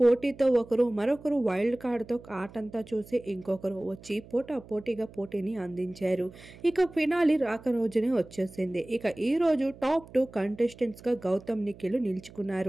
ఒకరు, మరొకరు వైల్డ్ కార్డ్తో ఆటంతా చూసి ఇంకొకరు వచ్చి పోటాపోటీగా పోటీని అందించారు. ఇక ఫినాలి రాక రోజునే వచ్చేసింది. ఇక ఈ రోజు టాప్ 2 కంటెస్టెంట్స్గా గౌతమ్, నిఖిల్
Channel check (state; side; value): noise; right; hum, 20 dB below the sound